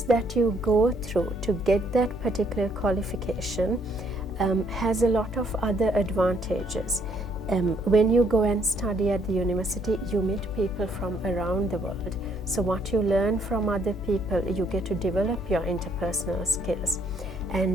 that you go through to get that particular qualification has a lot of other advantages. When you go and study at the university, you meet people from around the world. So what you learn from other people, you get to develop your interpersonal skills.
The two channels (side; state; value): both; normal; correlation 0.68